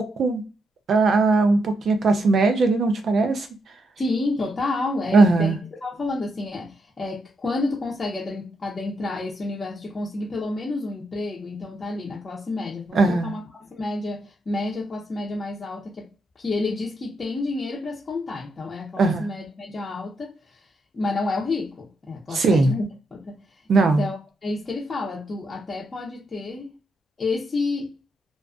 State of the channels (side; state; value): both; normal; correlation 0.81